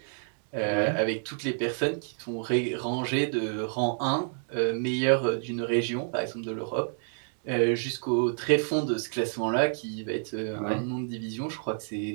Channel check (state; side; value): silent; left; digital silence